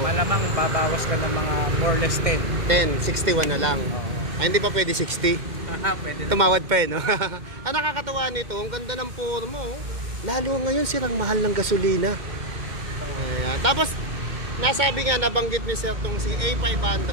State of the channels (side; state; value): left; late; 2.1 ms